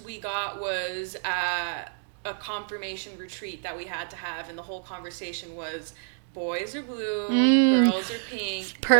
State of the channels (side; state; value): left; silent; digital silence